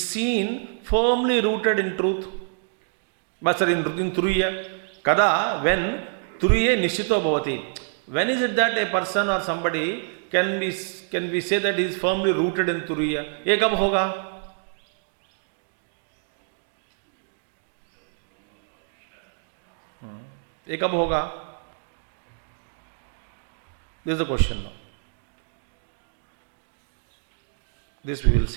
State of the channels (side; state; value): left; silent; digital silence